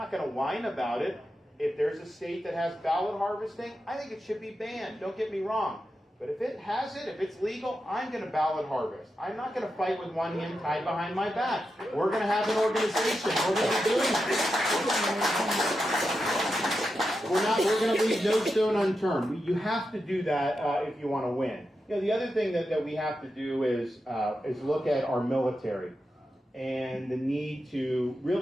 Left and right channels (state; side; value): normal; both; correlation 0.89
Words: going to whine about it. If there's a state that has ballot harvesting, I think it should be banned. Don't get me wrong. But if it has it, if it's legal, I'm going to ballot harvest. I'm not going to fight with one hand tied behind my back. We're going to have an organization. We're going to be doing it. We're going to leave no stone unturned. You have to do that if you want to win. The other thing that we have to do is look at our military and the need to